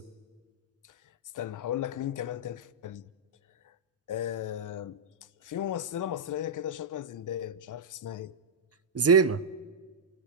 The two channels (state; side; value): normal; both; correlation -0.06